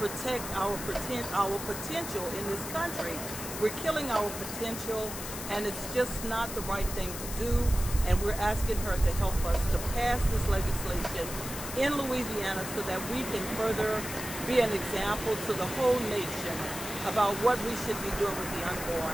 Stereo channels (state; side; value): noise; left; hiss, 8 dB below the sound